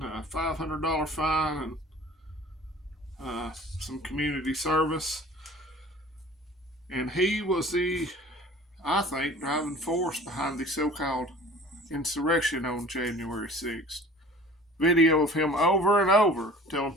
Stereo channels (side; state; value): both; normal; correlation 0.45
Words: a $500 fine, and some community service. And he was I think, driving force behind the so-called insurrection on January 6th. Video of him over and over telling